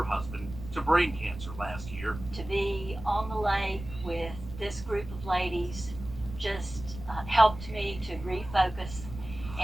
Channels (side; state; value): right; noise; rumble, 12 dB below the sound